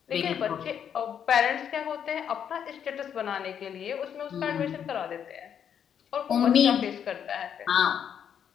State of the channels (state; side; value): quieter; right; 8.5 dB